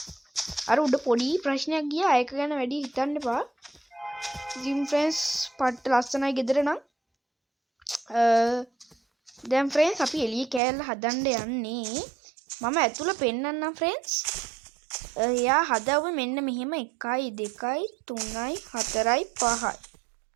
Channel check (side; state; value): left; drops out; at 10.6 s